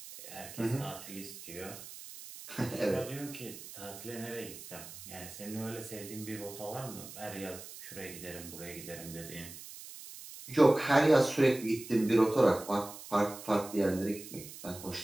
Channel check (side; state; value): right; noise; hiss, 14 dB below the sound